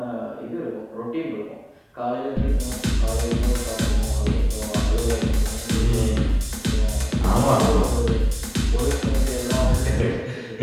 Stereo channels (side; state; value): both; identical; correlation 1.00